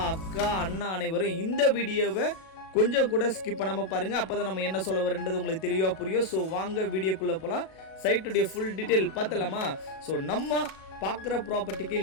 அக்கா, அண்ணா அனைவரும் இந்த வீடியோவை கொஞ்சம் கூட ஸ்கிப் பண்ணாமல் பாருங்கள். அப்போ தான் நம்ம என்ன சொல்ல வரன்றது உங்களுக்கு தெளிவாக புரியும். ஸோ வாங்க வீடியோக்குள்ளே போகலாம். சைட்டுடைய ஃபுல் டீட்டெயில் பார்த்தலாமா? ஸோ நம்ம பார்க்குற ப்ராப்பர்ட்டிக்கு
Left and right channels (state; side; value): late; right; 37 ms